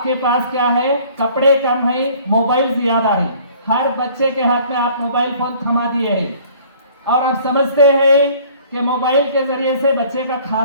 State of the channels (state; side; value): inverted; both; correlation -0.53